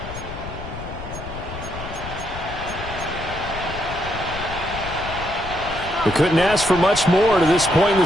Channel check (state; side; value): noise; left; rumble, 10 dB below the sound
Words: We couldn't ask for much more to this point in